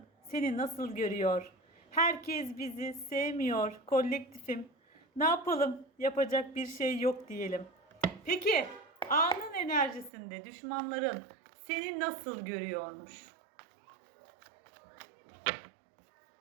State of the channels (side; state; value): left; drops out; at 10.1 s